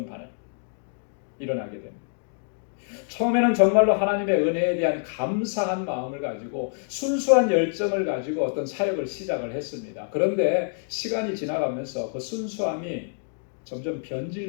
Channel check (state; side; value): silent; right; digital silence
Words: 일어나게 됩니다. 처음에는 정말로 하나님의 은혜에 대한 감사한 마음을 가지고 순수한 열정을 가지고 어떤 사역을 시작을 했습니다. 그런데 시간이 지나가면서 그 순수함이 점점